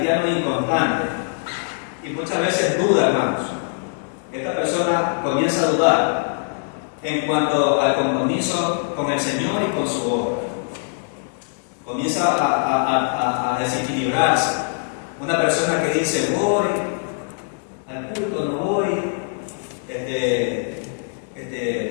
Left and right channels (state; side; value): silent; right; digital silence